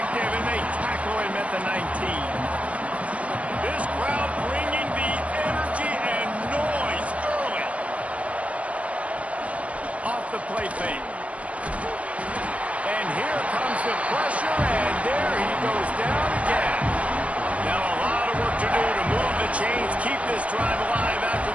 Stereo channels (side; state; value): left; late; 0.065 ms